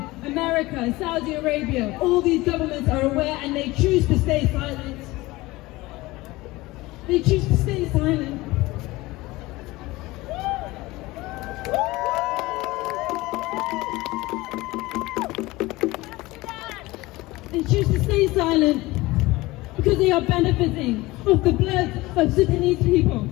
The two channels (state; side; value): quieter; right; 20.2 dB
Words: America, Saudi Arabia, all these governments are aware and they choose to stay silent. They choose to stay silent. They choose to stay silent because they are benefiting off the blood of Sudanese people.